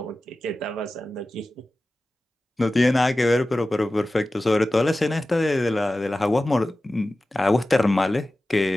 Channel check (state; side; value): normal; both; correlation 0.95